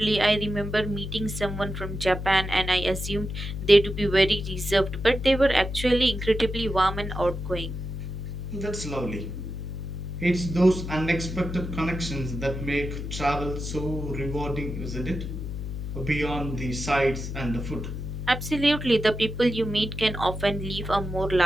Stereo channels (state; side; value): noise; left; hum, 6 dB below the sound